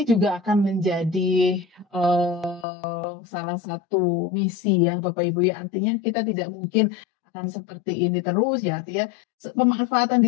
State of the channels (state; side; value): drops out; right; at 2.7 s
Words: juga akan menjadi, salah satu misi ya Bapak Ibu ya. Artinya kita tidak mungkin akan seperti ini terus ya, artinya pemanfaatan